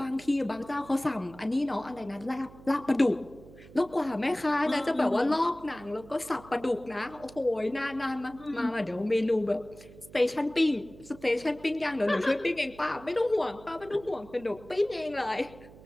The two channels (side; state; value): right; noise; hum, 20 dB below the sound